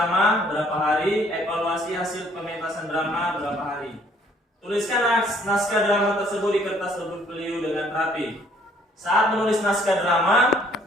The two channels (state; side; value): normal; both; correlation 0.62